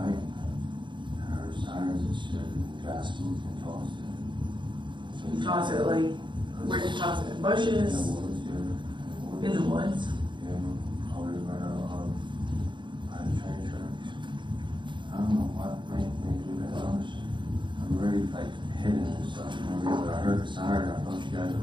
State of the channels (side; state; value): left; late; 0.23 ms